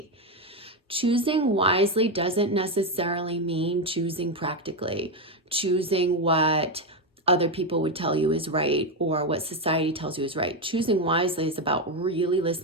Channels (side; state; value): both; normal; correlation 0.08